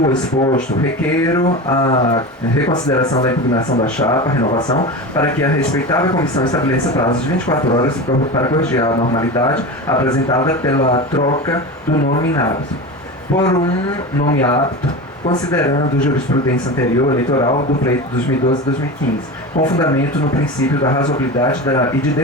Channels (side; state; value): both; normal; correlation 0.26